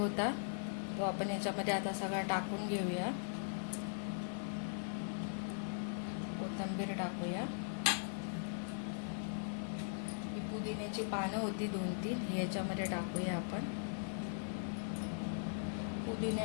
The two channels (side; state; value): right; silent; 51 dB below the other